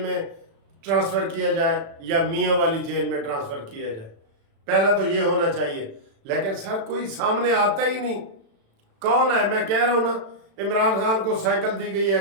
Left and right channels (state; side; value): late; left; 36 ms